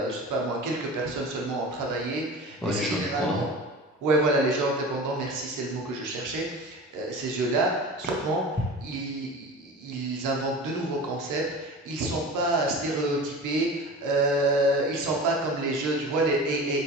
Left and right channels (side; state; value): both; normal; correlation 0.34